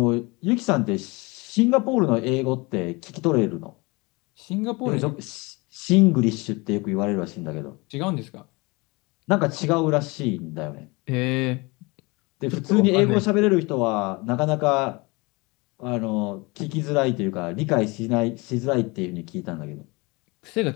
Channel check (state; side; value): quieter; right; 25.9 dB